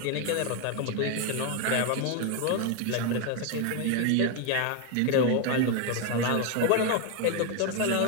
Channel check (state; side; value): different; both; correlation 0.01